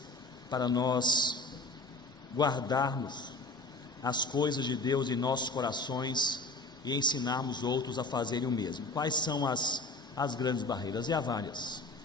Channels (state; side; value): quieter; right; 3.0 dB